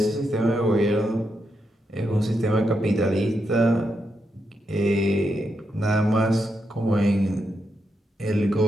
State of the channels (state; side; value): normal; both; correlation 0.83